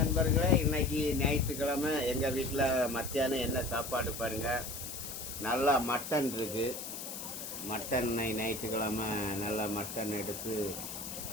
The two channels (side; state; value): left; noise; hiss, 8 dB below the sound